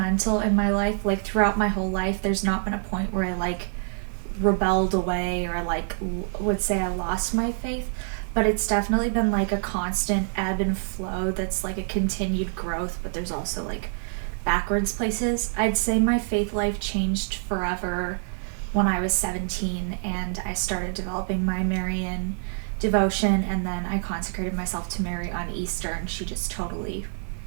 in my life. Like throughout my whole life, there's not been a point where I like rebelled away or like would say I lost my faith, but it's definitely been like a constant ebb and flow that's like a continued growth, but there's also like backwards places. I'd say my faith life changed forever when I was 17 and I started developing my Marian devotion, and then I consecrated myself to Mary on Easter, and she just totally,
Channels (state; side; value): silent; left; 61 dB below the other